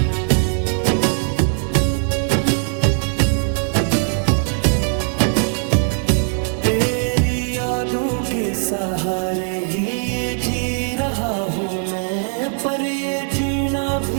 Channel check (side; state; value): left; silent; digital silence